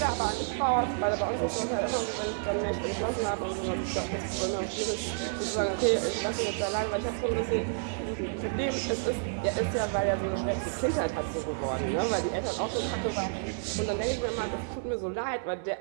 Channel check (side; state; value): left; silent; 58 dB below the other